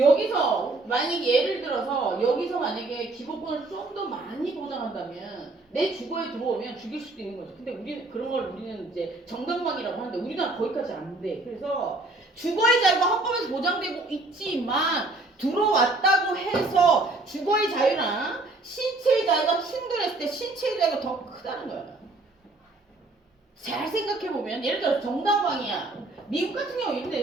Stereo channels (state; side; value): quieter; left; 3.0 dB